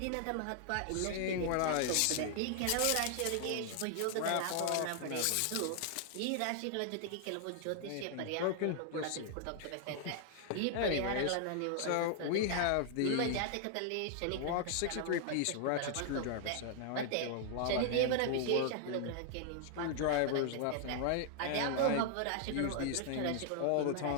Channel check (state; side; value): different; both; correlation 0.00